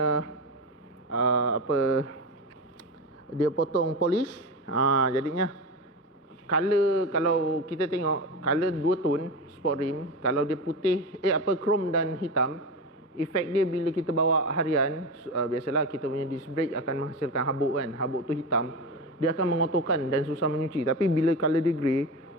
dia potong polish. Jadinya color, kalau kita tengok color 2 tone sport rim, kalau dia putih chrome dan hitam, efek dia bila kita bawa harian, biasalah kita punya disc brake akan menghasilkan habuk kan. Habuk tu hitam, dia akan mengotorkan dan susah menyuci. Tapi bila color dia grey,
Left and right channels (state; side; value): normal; both; correlation 0.22